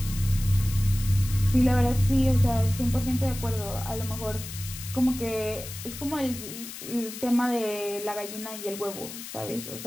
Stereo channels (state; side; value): noise; left; hiss, 11 dB below the sound